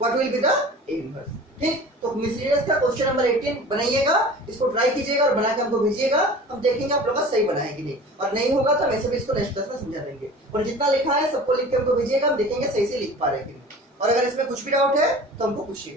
what will be the A inverse. ठीक, तो मिसलेनियस का क्वेश्चन नंबर 18 बनाइएगा, इसको ट्राई कीजिएगा और बना के हमको भेजिएगा, हम देखेंगे आप लोग का सही बनाए कि नहीं, और नहीं होगा तो वैसे भी इसको नेक्स्ट क्लास में समझा देंगे। और जितना लिखा है सबको लिख के हमको भेजिएगा, हम देखेंगे सही से लिख पा रहे हैं कि नहीं, और अगर इसमें कुछ भी डाउट है तो हमको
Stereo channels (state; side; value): normal; both; correlation 0.40